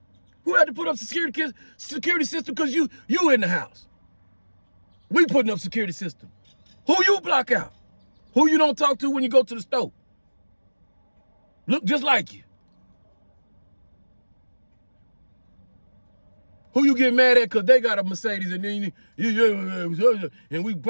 Who had to put up security system because you in the house? We putting up security system. Who you block out? Who you don't talk to when you go to the store? Look just like you. Who you get mad at because they got a Mercedes and then and we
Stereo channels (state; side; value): inverted; both; correlation -1.00